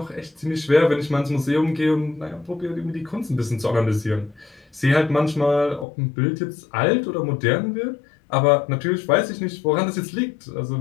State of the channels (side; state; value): right; drops out; at 5.9 s